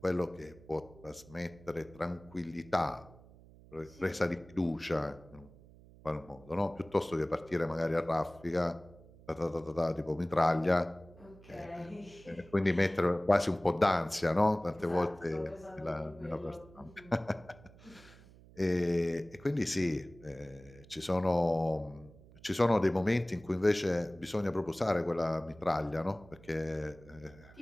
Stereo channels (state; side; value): noise; right; hum, 22 dB below the sound